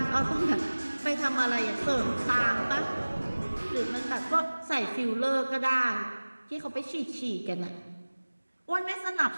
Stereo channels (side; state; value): both; inverted; correlation -1.00